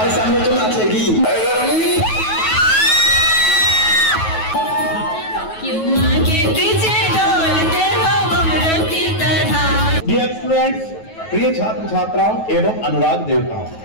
सामने तो नाचेगी। डियर स्टूडेंट्स, प्रिय छात्र छात्राओं एवं अनुराग देवताओं,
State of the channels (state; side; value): late; right; 9.3 ms